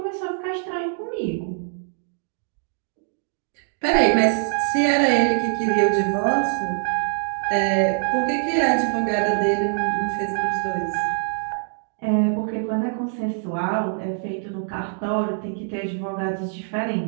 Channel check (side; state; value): left; silent; 63 dB below the other